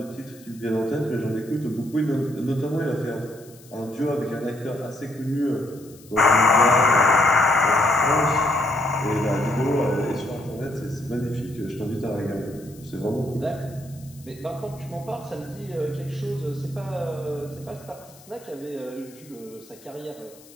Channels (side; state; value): left; noise; hiss, 24 dB below the sound